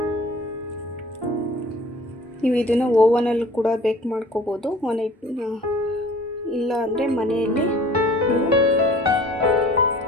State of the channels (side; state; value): both; normal; correlation 0.49